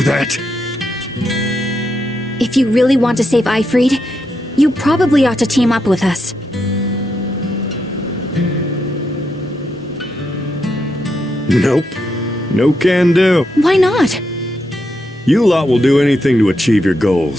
If you really want to save Ifrit, you probably ought to team up with us. Nope. No can do. Why not? You lot will do anything to achieve your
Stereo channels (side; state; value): both; normal; correlation 0.82